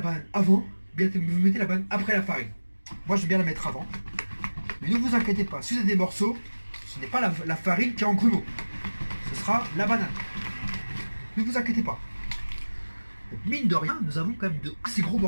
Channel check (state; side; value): inverted; both; correlation -1.00